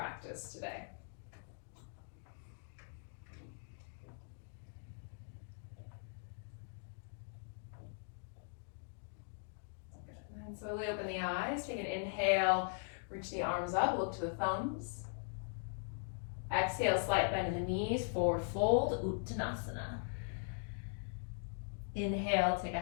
today. And slowly open the eyes. Take an inhale, reach the arms up, look to the thumbs. Exhale, slight bend in the knees, forward fold, Uttanasana. Inhale, take a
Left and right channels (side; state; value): right; silent; digital silence